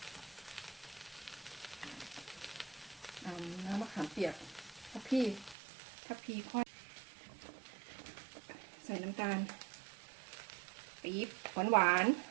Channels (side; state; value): left; drops out; at 5.6 s